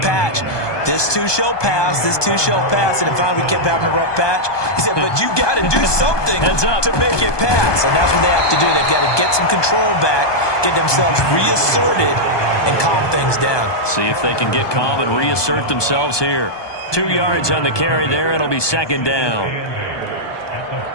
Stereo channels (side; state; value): right; late; 1.2 ms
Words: this too shall pass, this too shall pass. And finally we kept having a rough patch. He said, but you got to do something to make it pass. And that's what they have to do. They've got to get some control back, get themselves reasserted, and calm things down. See if they can get calm and reassert themselves here. 2 yards on the carry there. It'll be second down.